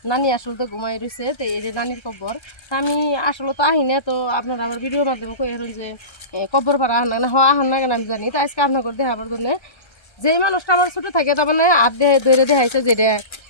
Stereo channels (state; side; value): late; right; 1.3 ms